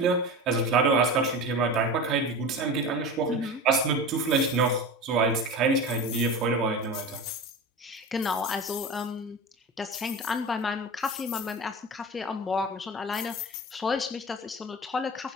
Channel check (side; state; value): both; normal; correlation 0.30